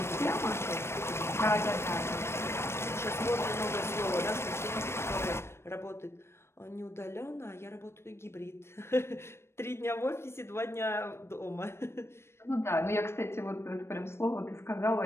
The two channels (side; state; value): right; late; 0.12 ms